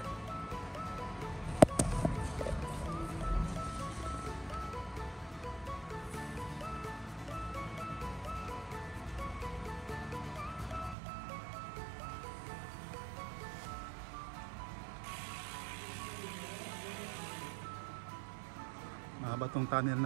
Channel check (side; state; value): left; drops out; at 11.0 s